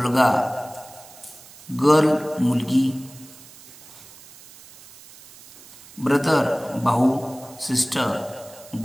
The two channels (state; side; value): noise; right; hiss, 21 dB below the sound